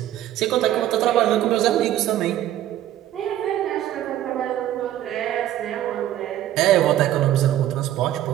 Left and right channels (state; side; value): quieter; left; 12.6 dB